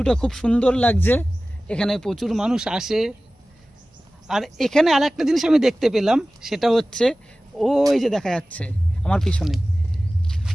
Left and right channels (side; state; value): both; normal; correlation 0.97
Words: খুব সুন্দর লাগছে, এখানে প্রচুর মানুষ আসে। আর এখানে আরেকটা জিনিস আমি দেখতে পেলাম, সেটা হচ্ছে ওই যে দেখা যাচ্ছে আমার পিছনে,